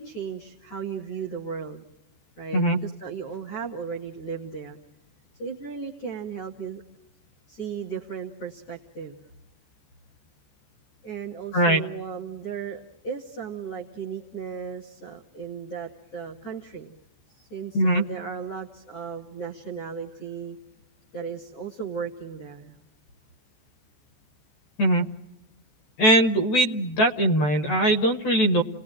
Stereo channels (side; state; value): right; late; 14 ms